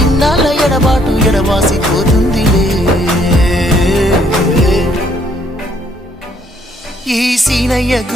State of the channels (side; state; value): both; normal; correlation 0.67